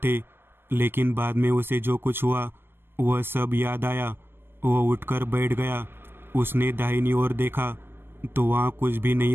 लेकिन बाद में उसे जो कुछ हुआ वह सब याद आया। वह उठकर बैठ गया। उसने दाहिनी ओर देखा तो वहाँ कुछ भी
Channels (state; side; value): late; left; 0.10 ms